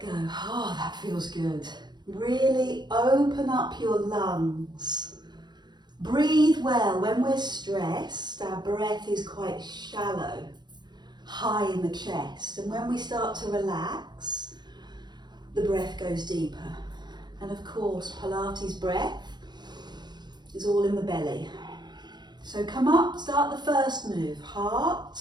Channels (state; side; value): late; left; 0.21 ms